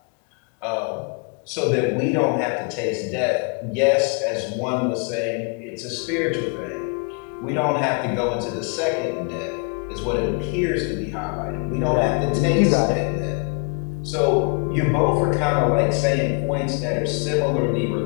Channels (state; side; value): quieter; right; 36.5 dB